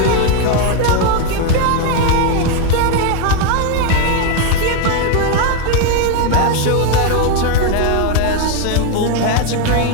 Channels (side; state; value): both; different; correlation 0.01